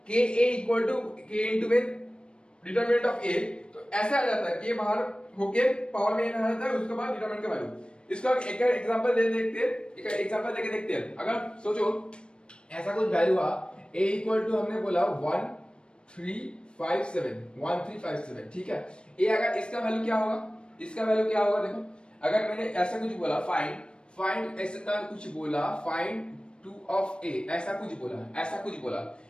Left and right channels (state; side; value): late; right; 0.055 ms